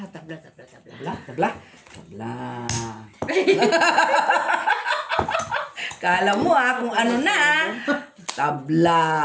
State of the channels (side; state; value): both; identical; correlation 1.00